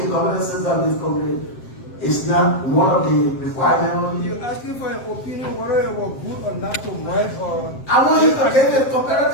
governance system of this country It's not one of the requirements. You're asking for an opinion whether it was good or not to merge or... I want you to get a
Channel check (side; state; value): right; late; 7.6 ms